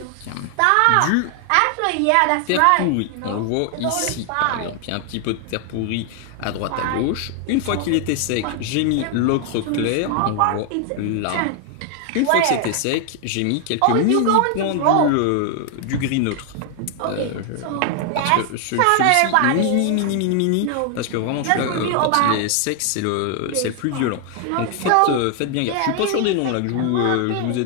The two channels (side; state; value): both; different; correlation 0.00